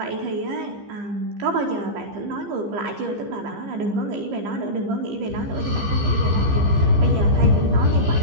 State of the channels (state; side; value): late; left; 15 ms